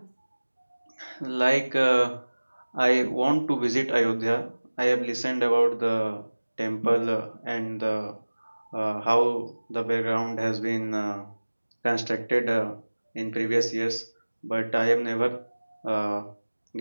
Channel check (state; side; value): inverted; both; correlation -1.00